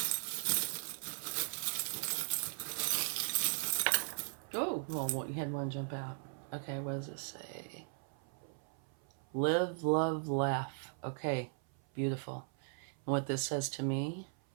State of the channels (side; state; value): left; silent; 53 dB below the other